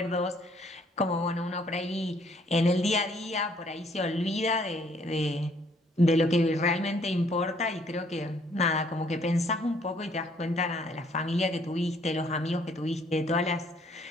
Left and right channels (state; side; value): normal; both; correlation 0.64